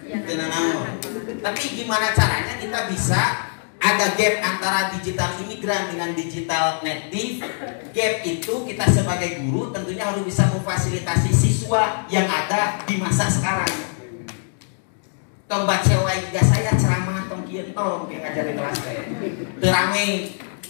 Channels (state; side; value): silent; right; digital silence